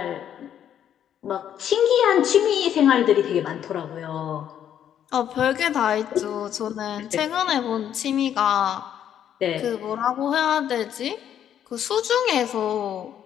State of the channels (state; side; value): quieter; right; 9.8 dB